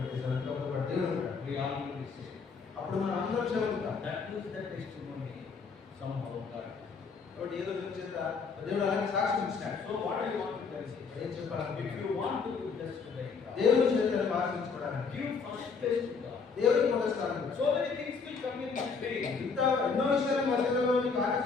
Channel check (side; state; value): right; quieter; 5.2 dB